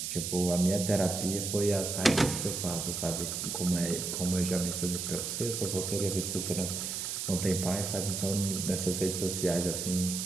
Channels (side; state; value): right; noise; hiss, 3 dB below the sound